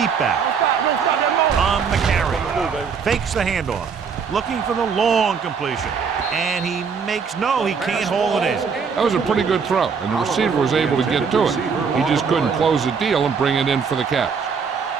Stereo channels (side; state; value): left; quieter; 6.0 dB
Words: back. On the carry. Fakes the handoff. Looking for the long completion. And he makes no, he can't hold it in. That was a pretty good throw, and the receiver was able to get to it. He just couldn't close the deal and bring it in for the catch.